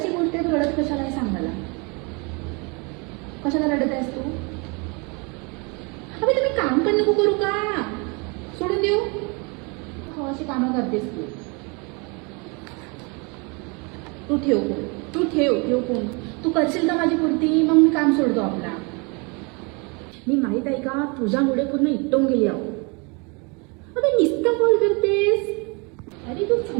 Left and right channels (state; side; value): quieter; left; 31.0 dB